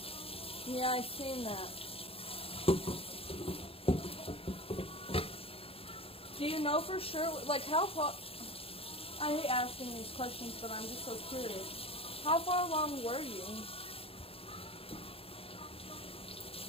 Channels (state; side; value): late; right; 0.27 ms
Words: Yeah, I've seen that. Do you know for sure, like how far, I hate asking these questions, but I'm just so curious. How far along were you?